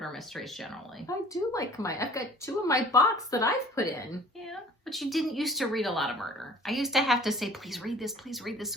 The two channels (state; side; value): normal; both; correlation 0.50